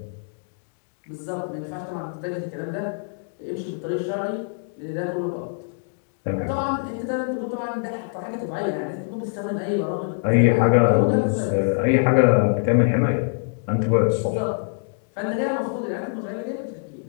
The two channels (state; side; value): silent; right; digital silence